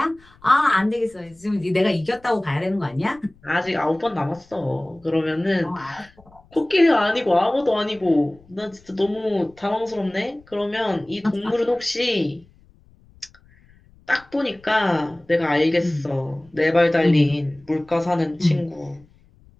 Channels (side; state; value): left; noise; rumble, 29 dB below the sound